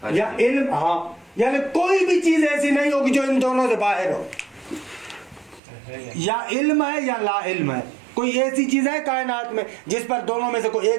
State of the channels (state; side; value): drops out; left; at 5.6 s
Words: یا علم, ہاں یعنی کوئی بھی چیز ایسی نہیں ہوگی جو ان دونوں سے باہر ہو, یا علم ہے یا لا علم ہے. کوئی ایسی چیز ہے کائنات میں جس پر دونوں میں سے کوئی